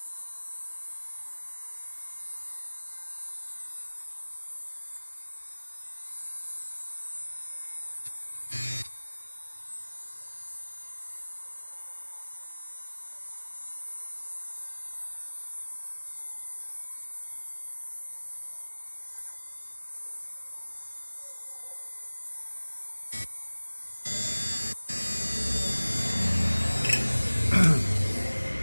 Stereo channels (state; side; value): inverted; both; correlation -1.00